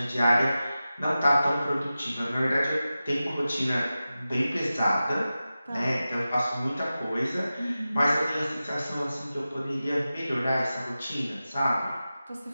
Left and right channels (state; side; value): inverted; both; correlation -0.94